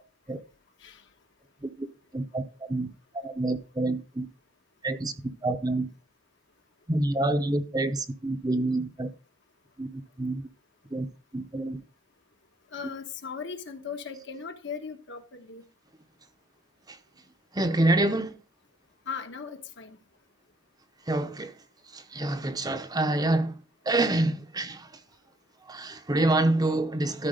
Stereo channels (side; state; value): both; normal; correlation 0.69